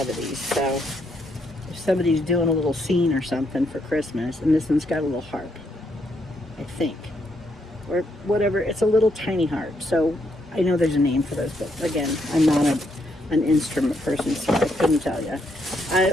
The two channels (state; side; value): normal; both; correlation 0.76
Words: of these, so if somebody's doing a little scene or something for Christmas, and this one's got a little harp, I think, or whatever. It's a little tiny harp, so I know there's a name for those, but again, I'm not an instrument person, so I couldn't tell you.